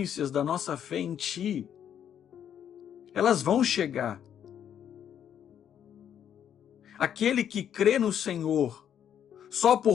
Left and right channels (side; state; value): right; quieter; 9.3 dB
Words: da nossa fé em Ti. Elas vão chegar. Aquele que crê no Senhor só